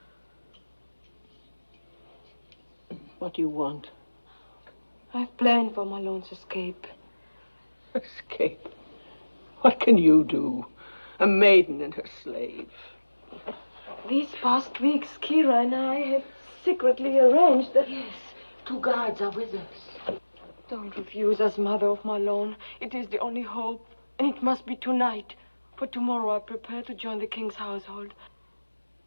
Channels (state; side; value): inverted; both; correlation -1.00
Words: What do you want? I've planned for Malone's escape. Escape? What can you do? A maiden and her slave. These past weeks, Kira and I have secretly arranged that... Yes, 2 guards are with us. Don't refuse us, Mother of Malone. It is the only hope, and it must be tonight. For tomorrow I prepare to join the king's household.